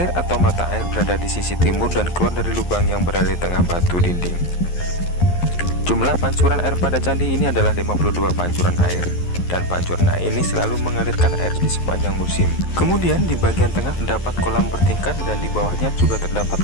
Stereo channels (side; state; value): right; late; 11 ms